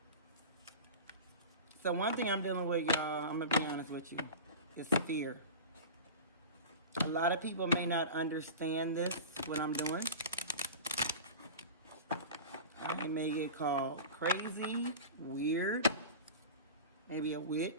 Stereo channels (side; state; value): both; inverted; correlation -0.32